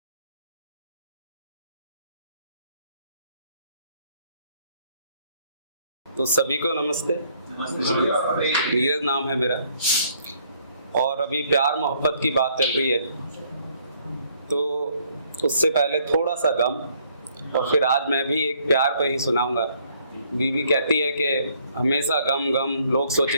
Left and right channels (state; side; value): inverted; both; correlation -0.66